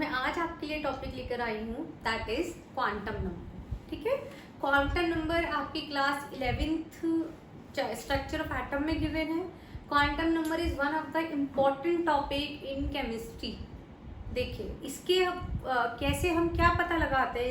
आज आपके लिए टॉपिक लेकर आई हूँ दैट इज क्वांटम नंबर। ठीक है, क्वांटम नंबर आपकी class 11th structure of atom में गिवन है। Quantum number is one of the important topic in chemistry. देखिए इसके कैसे हम क्या पता लगाते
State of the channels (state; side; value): identical; both; correlation 1.00